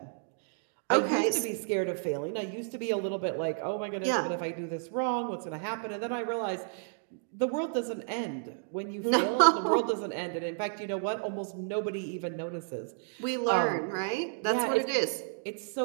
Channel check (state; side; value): silent; left; digital silence